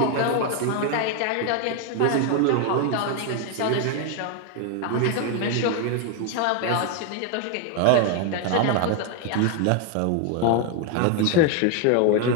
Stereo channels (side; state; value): both; different; correlation 0.01